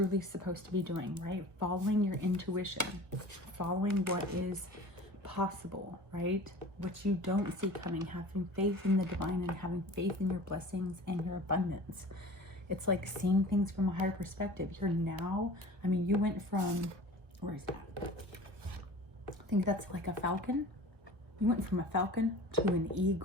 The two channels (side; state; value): left; late; 1.3 ms